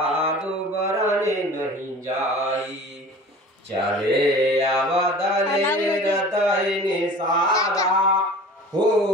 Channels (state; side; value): normal; both; correlation 0.41